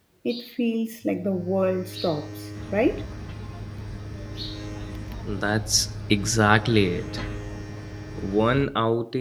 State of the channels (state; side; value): identical; both; correlation 1.00